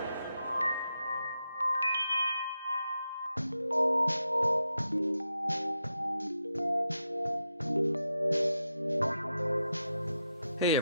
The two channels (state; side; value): inverted; both; correlation -0.85